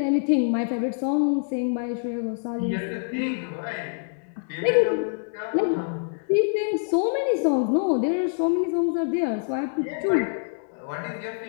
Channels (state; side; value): silent; right; 61 dB below the other